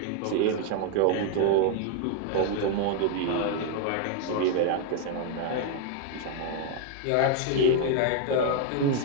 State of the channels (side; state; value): both; different; correlation 0.00